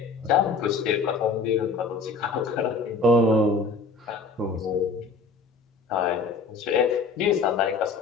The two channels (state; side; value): quieter; right; 4.2 dB